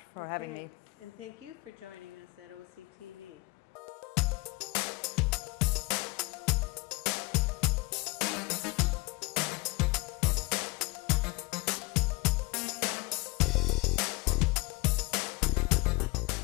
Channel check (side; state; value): right; quieter; 25.4 dB